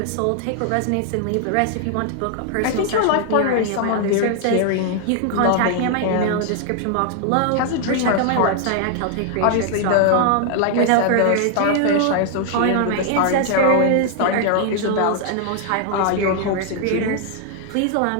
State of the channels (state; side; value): different; both; correlation 0.00